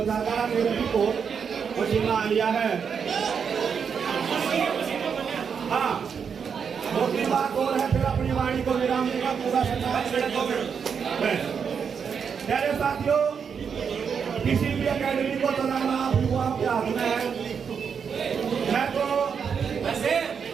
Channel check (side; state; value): left; quieter; 6.7 dB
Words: ज्यादा है, मेरे भी को पसीना आ लिया है। हाँ दूसरी बात और है, फिर अपनी वाणी को विराम देगा पूरा प्यारे साथियों किसी भी अकेडमी को चलाना आपके हाथ में है। मैं तो वैसे